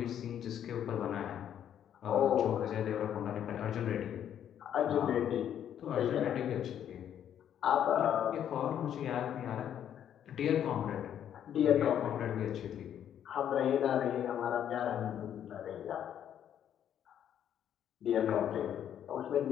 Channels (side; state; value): right; quieter; 9.8 dB